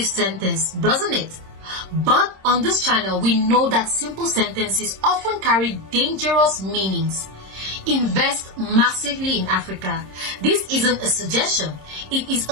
sentence, doesn't it? But on this channel, we know that simple sentences often carry dangerous meanings. Invest massively in Africa. This isn't a suggestion, it is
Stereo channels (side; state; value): left; late; 26 ms